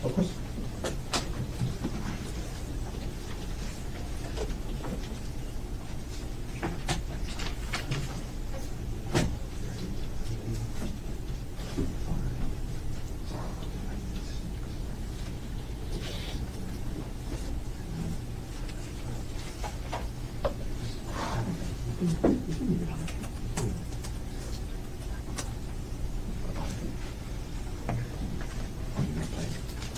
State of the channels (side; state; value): both; identical; correlation 1.00